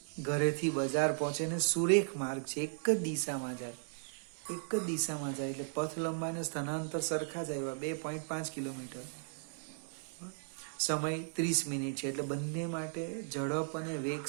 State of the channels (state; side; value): silent; left; digital silence